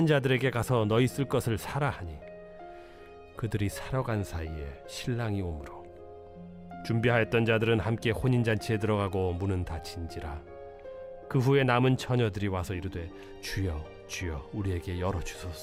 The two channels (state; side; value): identical; both; correlation 1.00